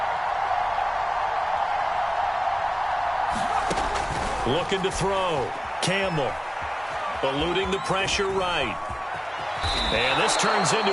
Looking to throw. Campbell. Eluding the pressure right. And this turns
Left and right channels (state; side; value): identical; both; correlation 1.00